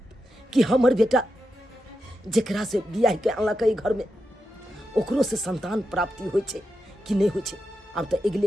कि हमर बेटा जेकरा से बियाह के अनलकै घर में, ओकरो से संतान प्राप्ति होइ छे कि नहीं होइ छे। अब तो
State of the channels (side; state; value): both; normal; correlation 0.88